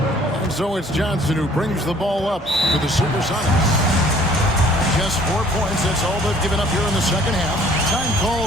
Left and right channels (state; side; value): normal; both; correlation 0.56